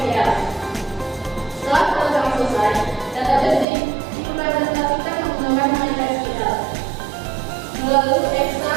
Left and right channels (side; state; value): left; drops out; at 3.7 s